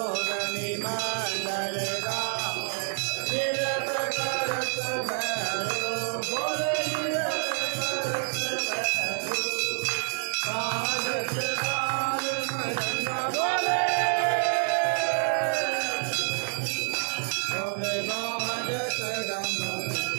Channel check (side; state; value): left; silent; 59 dB below the other